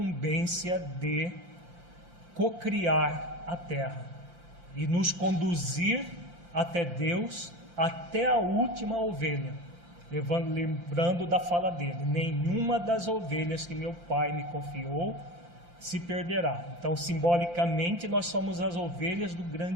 de cocriar a Terra e nos conduzir até Deus, até a última ovelha. Lembrando da fala dele: nenhuma das ovelhas que meu Pai me confiou se perderá. Então, simbolicamente, nós somos as ovelhas do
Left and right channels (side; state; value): left; late; 5.8 ms